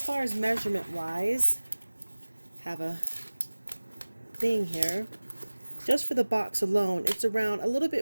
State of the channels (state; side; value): inverted; both; correlation -1.00